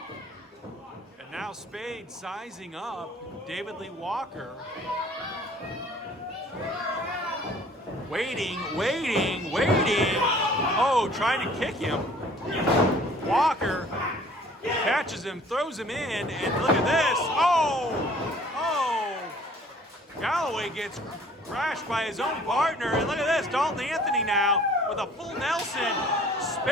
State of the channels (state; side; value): normal; both; correlation 0.53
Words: Now Spade sizing up David Lee Walker. Waiting. Oh, trying to kick him. Walker catches him, throws him in, and look at this. Oh! Galloway gets crashed by his own partner, and look at this. Dalton Anthony now with a full Nelson.